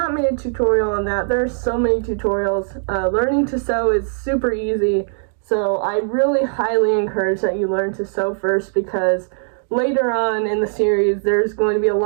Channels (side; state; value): left; silent; digital silence